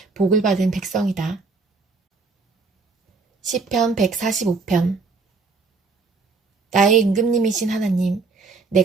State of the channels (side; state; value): left; quieter; 4.2 dB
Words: 복을 받은 백성이다. 시편 145편. 나의 임금님이신 하나님,